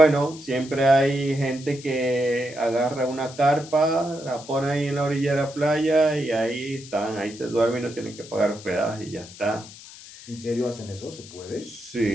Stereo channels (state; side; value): noise; left; hiss, 17 dB below the sound